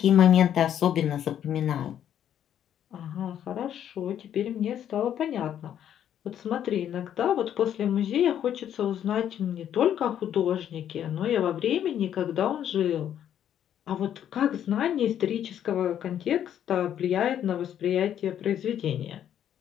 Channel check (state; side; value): quieter; right; 10.1 dB